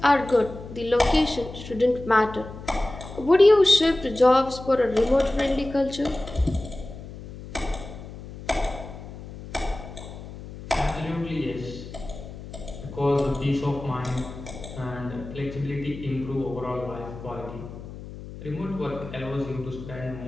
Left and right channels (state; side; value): noise; left; hum, 13 dB below the sound